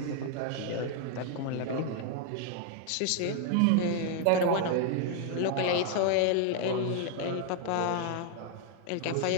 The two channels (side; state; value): both; different; correlation 0.00